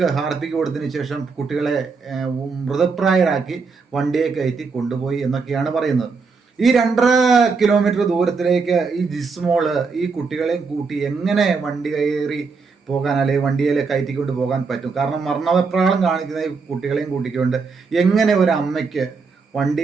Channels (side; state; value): left; quieter; 4.8 dB